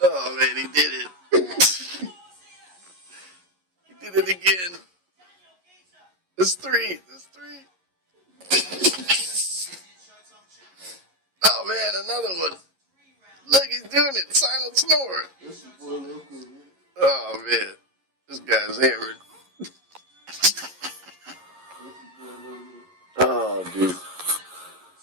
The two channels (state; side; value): late; left; 11 ms